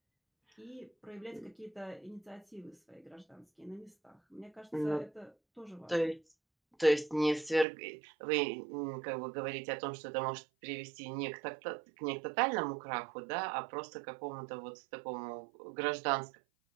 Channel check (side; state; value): left; drops out; at 7.7 s